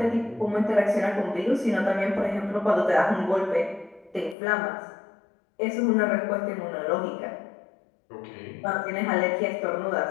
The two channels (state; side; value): drops out; right; at 4.4 s